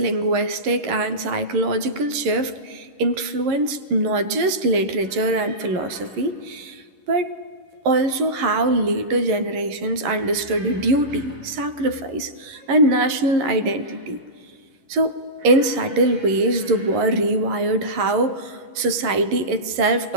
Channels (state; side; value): late; left; 11 ms